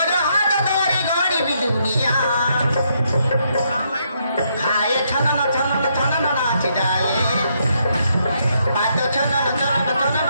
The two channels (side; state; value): both; inverted; correlation -0.75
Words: हाथ धरी गड़ी भी दुनिया खाए छनन छनन छनन नाच जाए पाद छनन छनन छनन